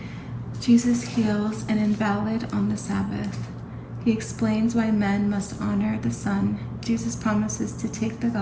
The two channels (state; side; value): identical; both; correlation 1.00